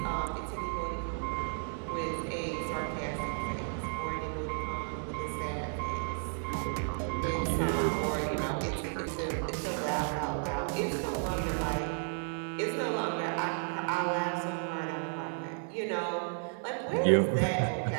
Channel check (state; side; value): silent; left; 56 dB below the other